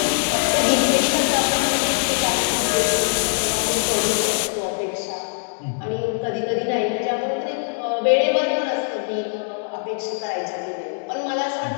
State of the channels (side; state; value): right; silent; digital silence